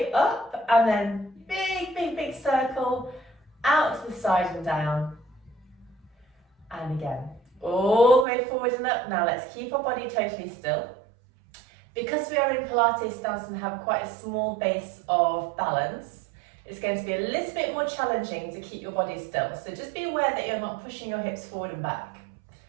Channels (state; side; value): drops out; left; at 8.2 s